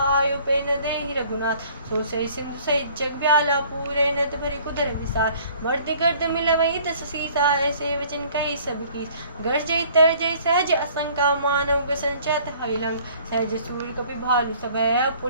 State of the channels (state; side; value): inverted; both; correlation -0.54